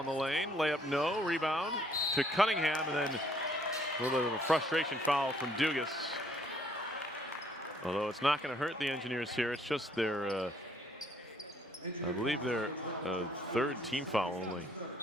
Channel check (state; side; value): normal; both; correlation 0.65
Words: the lane. Layup no. Rebound to Cunningham, and then a little bit of a frustration foul from Dugas. Although it's not going to hurt the Engineers here. It's just their, I believe their third team foul only.